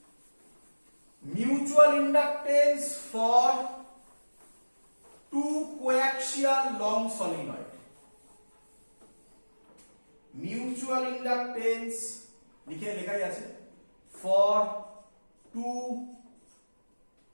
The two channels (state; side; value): inverted; both; correlation -1.00